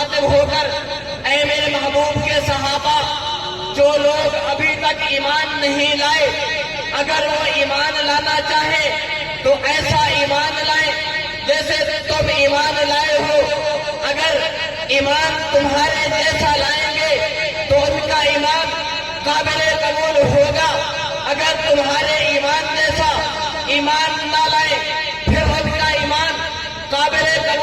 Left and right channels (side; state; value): both; identical; correlation 1.00